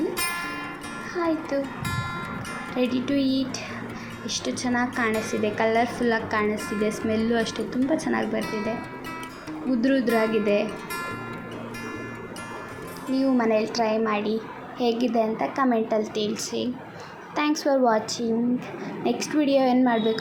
ಆಯಿತು, ರೆಡಿ ಟು ಈಟ್. ಎಷ್ಟು ಚೆನ್ನಾಗಿ ಕಾಣಿಸ್ತಿದೆ, ಕಲರ್ಫುಲ್ಲಾಗಿ ಕಾಣಿಸ್ತಿದೆ. ಸ್ಮೆಲ್ಲು ಅಷ್ಟೇ ತುಂಬ ಚೆನ್ನಾಗಿ ಬರ್ತಿದೆ. ಉದ್ರಾಗಿದೆ. ನೀವು ಮನೇಲಿ ಟ್ರೈ ಮಾಡಿ, ಹೇಗಿದೆ ಅಂತ ಕಮೆಂಟಲ್ಲಿ ತಿಳಿಸಿ. Thanks for watching. Next video ಏನು ಮಾಡಬೇಕು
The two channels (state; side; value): identical; both; correlation 1.00